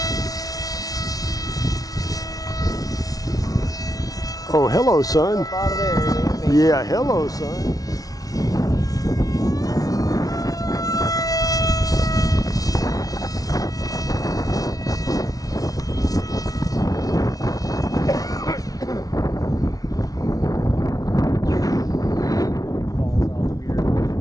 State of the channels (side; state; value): right; late; 0.18 ms